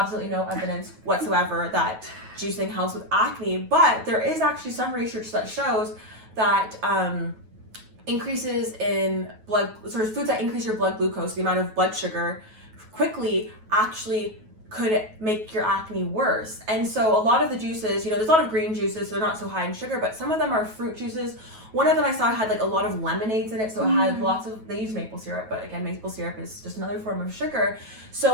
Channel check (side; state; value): left; late; 9.3 ms